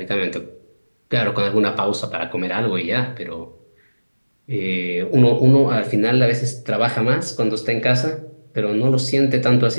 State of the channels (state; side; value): inverted; both; correlation -1.00